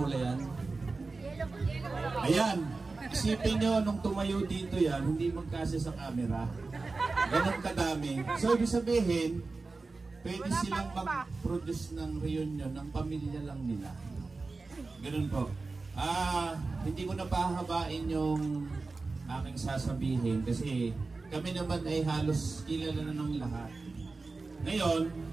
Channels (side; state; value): left; quieter; 3.8 dB